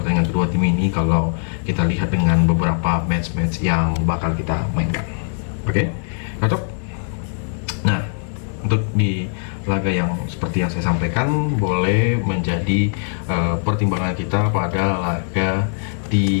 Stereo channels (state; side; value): silent; right; digital silence